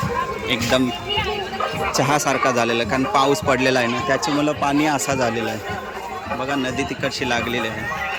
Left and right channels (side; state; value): both; identical; correlation 1.00